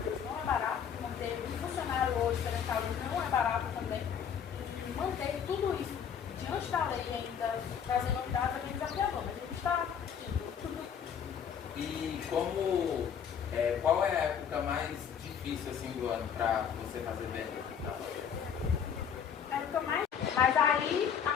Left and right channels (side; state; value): right; quieter; 7.8 dB